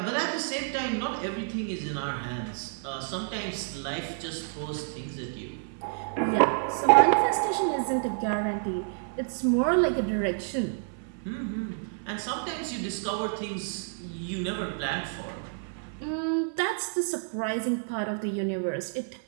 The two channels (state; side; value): silent; left; 58 dB below the other